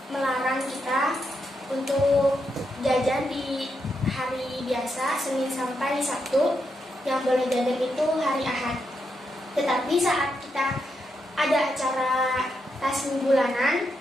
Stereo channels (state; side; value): normal; both; correlation 0.82